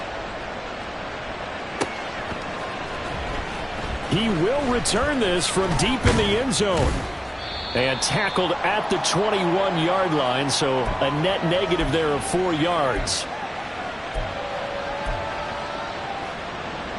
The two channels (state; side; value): identical; both; correlation 1.00